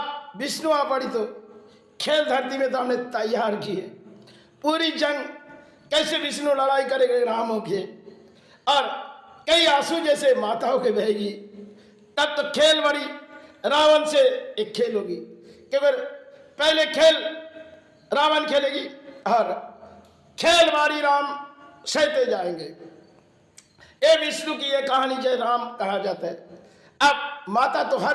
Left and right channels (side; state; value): both; identical; correlation 1.00